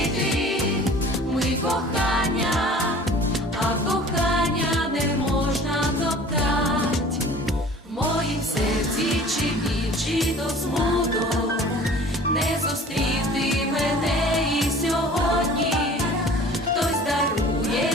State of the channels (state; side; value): normal; both; correlation 0.46